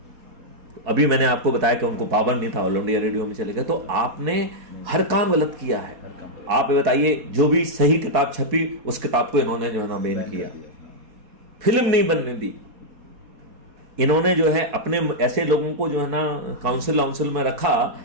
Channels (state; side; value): late; left; 4.6 ms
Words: अभी मैंने आपको बताया कि उनको पावर नहीं था, ऑल इंडिया रेडियो में चले गए, तो आपने हर काम गलत किया है। आप बताइए, जो भी सही किताब छपी उस किताब को इन्होंने जो है ना बैन किया, फिल्म नहीं बनने दी। इन्होंने जो है अपने ऐसे लोगों को जो है ना काउंसिल में रखा